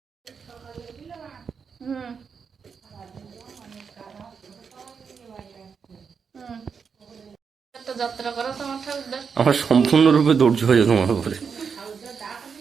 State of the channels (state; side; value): quieter; left; 6.1 dB